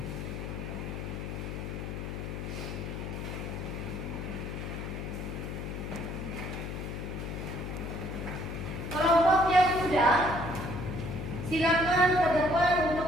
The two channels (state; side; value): noise; left; hum, 5 dB below the sound